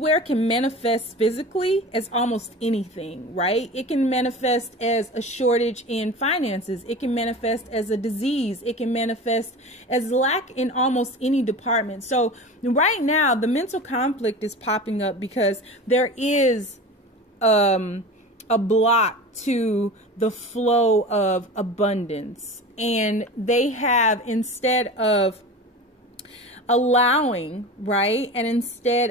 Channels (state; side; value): normal; both; correlation 0.33